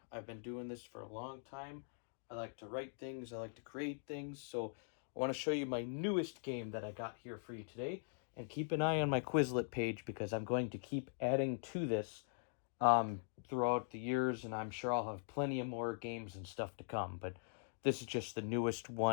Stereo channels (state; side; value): silent; right; digital silence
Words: I've been doing this for a long time. I like to write things. I like to create things. So, I want to show you my newest game that I got here for you today. And keep an eye on my Quizlet page because I'm going to keep adding to this throughout the years, and I'm sure I'll have plenty of more games and stuff to come. But this is just the newest